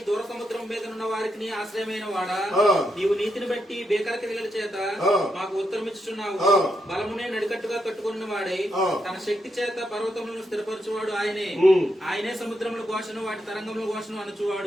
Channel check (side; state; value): both; normal; correlation 0.82